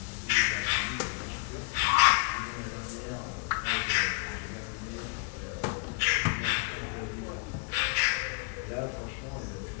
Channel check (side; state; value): right; quieter; 36.0 dB